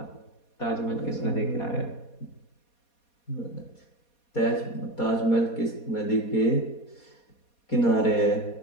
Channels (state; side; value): late; right; 4.2 ms